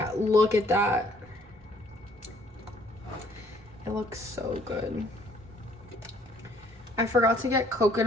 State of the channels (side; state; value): both; normal; correlation 0.61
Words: look at that. It looks so good. I forgot to get